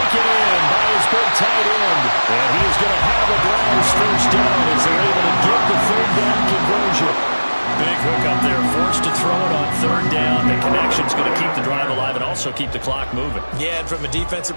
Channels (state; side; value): inverted; both; correlation -1.00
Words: in by his big tight end. And he is going to have a Browns first down as they're able to get the third down conversion. Big hook up there, forced to throw it on third down. The connection's going to keep the drive alive and also keep the clock moving. Yeah, and from a defensive